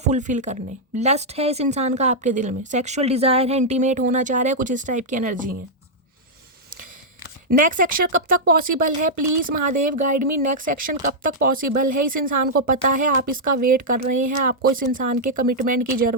करने, लस्ट है इस इंसान का आपके दिल में, सेक्सुअल डिज़ायर है, इंटीमेट होना चाह रहा है, कुछ इस टाइप की एनर्जी है। नेक्स्ट सेक्शन कब तक पॉसिबल है? Please Mahadev guide me, next section कब तक पॉसिबल है? इस इंसान को पता है आप इसका वेट कर रहे हैं, आपको इस इंसान के कमिटमेंट की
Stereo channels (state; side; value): normal; both; correlation -0.06